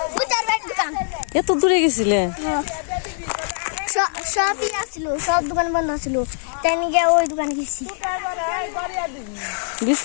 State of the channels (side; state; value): right; silent; digital silence